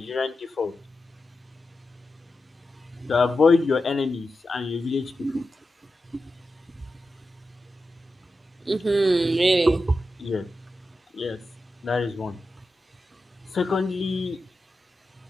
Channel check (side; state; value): both; normal; correlation 0.91